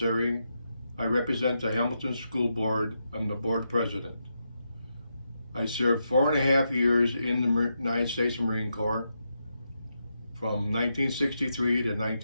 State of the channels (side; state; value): both; inverted; correlation -0.84